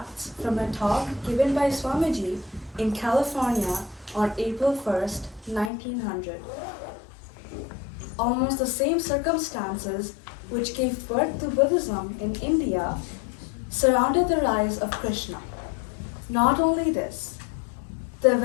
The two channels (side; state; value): right; drops out; at 5.7 s